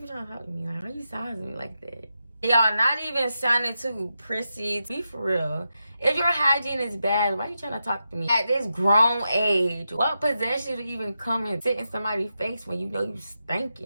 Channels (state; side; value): inverted; both; correlation -0.88